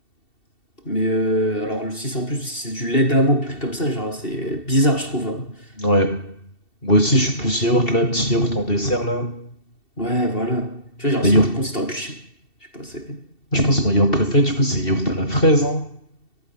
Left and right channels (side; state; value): right; late; 2.7 ms